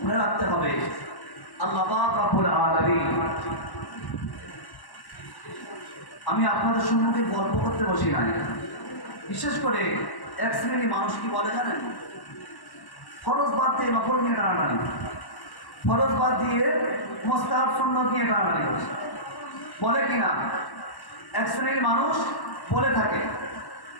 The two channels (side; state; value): right; late; 1.1 ms